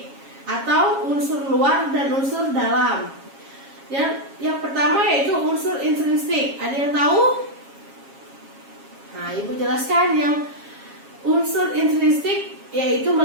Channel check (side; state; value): left; late; 7.3 ms